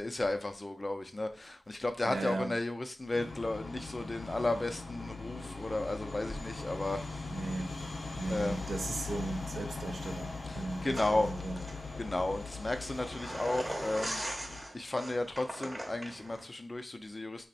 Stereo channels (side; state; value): both; normal; correlation 0.96